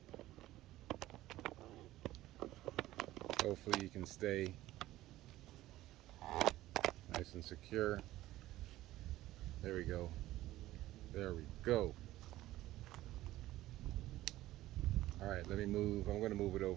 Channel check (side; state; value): left; quieter; 15.7 dB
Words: Hopefully you can stay nice and secure. There we go. There we go. All right, let me move. I'm going to move it